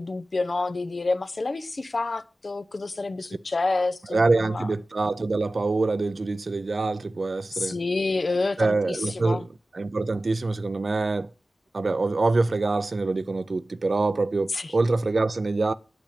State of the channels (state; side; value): normal; both; correlation 0.96